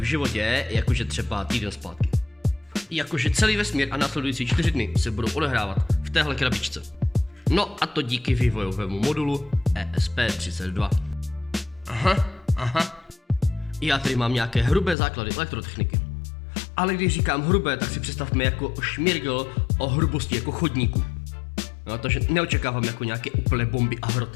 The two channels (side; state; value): right; drops out; at 15.0 s